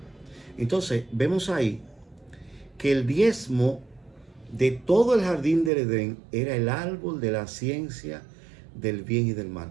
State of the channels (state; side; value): drops out; left; at 5.7 s